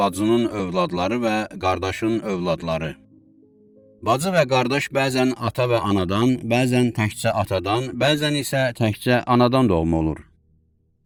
övladları və qardaşın övladları. Bacı və qardaş bəzən ata və anadan, bəzən təkcə atadan, bəzən isə təkcə anadan doğma olur.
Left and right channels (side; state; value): both; identical; correlation 1.00